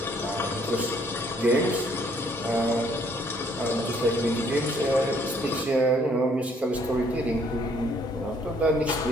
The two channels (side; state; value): both; normal; correlation 0.65